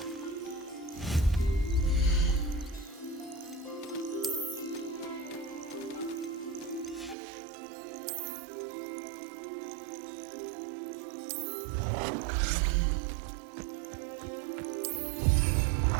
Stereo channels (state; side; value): drops out; left; at 7.2 s